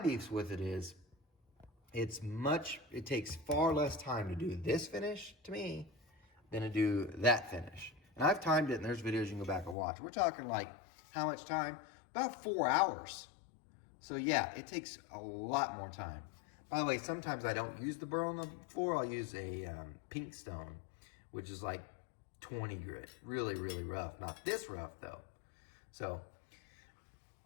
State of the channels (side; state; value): right; drops out; at 9.8 s